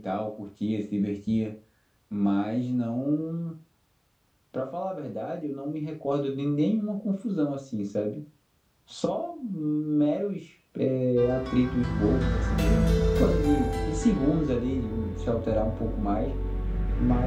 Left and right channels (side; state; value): both; identical; correlation 1.00